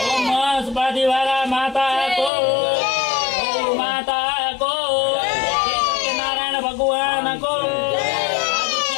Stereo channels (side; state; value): right; drops out; at 2.3 s